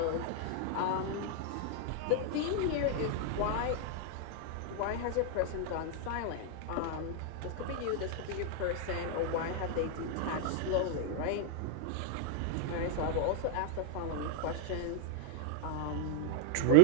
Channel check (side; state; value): both; different; correlation 0.00